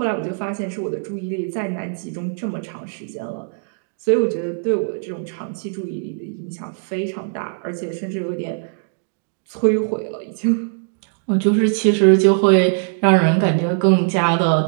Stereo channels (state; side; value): silent; left; digital silence